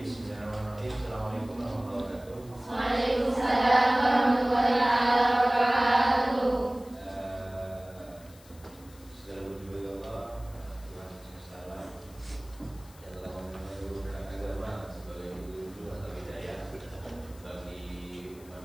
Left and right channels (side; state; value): left; noise; hiss, 24 dB below the sound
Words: Assalamualaikum warahmatullahi wabarakatuh. Waalaikumsalam warahmatullahi wabarakatuh. Segala puji bagi Allah, Tuhan semesta alam, yang telah menurunkan agama sebagai petunjuk atau hidayah bagi umat